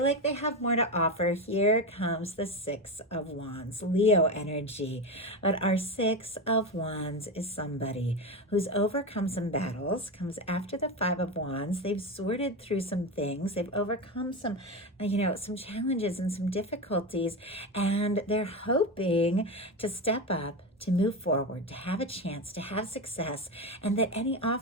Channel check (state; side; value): normal; both; correlation 0.18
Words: like they have more to offer. Here comes the 6 of Wands, Leo energy. But our 6 of Wands is somebody who's overcome some battles, comes after the 5 of Wands. They've sorted through some things. They've overcome some challenges and some difficulties, and they're hoping to step up, to move forward, to have a chance, to have success, and that any